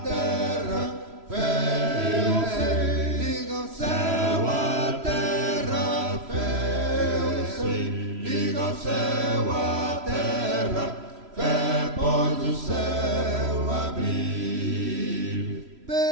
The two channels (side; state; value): left; late; 3.0 ms